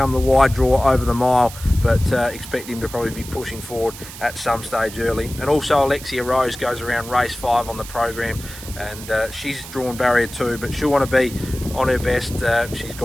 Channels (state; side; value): noise; right; hiss, 14 dB below the sound